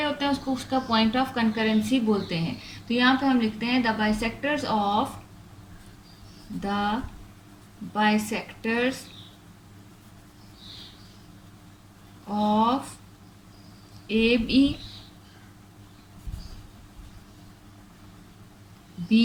होते हैं उसको उसका पॉइंट ऑफ कंकरेंसी बोलते हैं। तो यहाँ पे हम लिखते हैं the bisectors of A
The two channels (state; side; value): identical; both; correlation 1.00